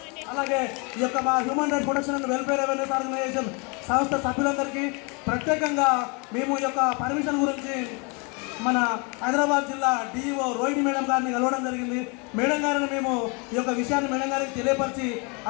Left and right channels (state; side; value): quieter; right; 32.2 dB